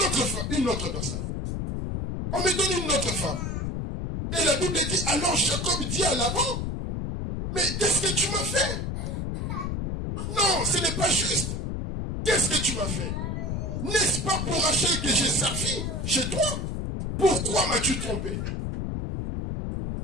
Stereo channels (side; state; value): left; noise; rumble, 3 dB below the sound